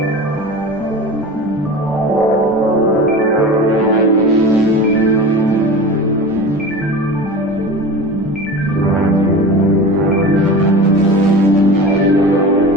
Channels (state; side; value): normal; both; correlation 0.32